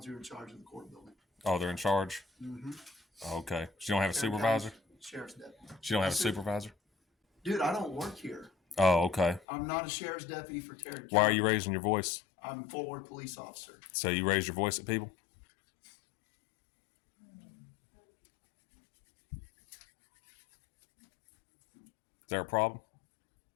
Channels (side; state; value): right; drops out; at 9.4 s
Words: who are in charge of the court building. Oh, they're in charge? Mm-hmm. Okay. She don't have a supervisor? Sheriff's deputy. She don't have a Yes, sir. supervisor? Dude, I don't work here. Oh, okay. I'm not a sheriff's deputy for Tarrant County. Why are you raising your voice? I'm a Fort Worth police officer. So you raise your voice at people? Is there a problem?